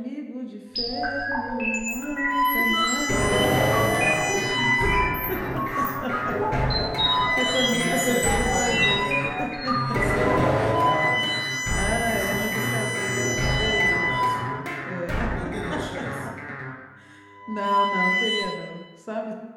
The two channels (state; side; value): identical; both; correlation 1.00